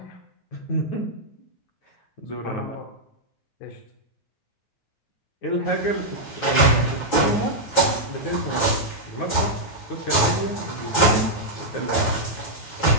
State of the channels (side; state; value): right; late; 9.4 ms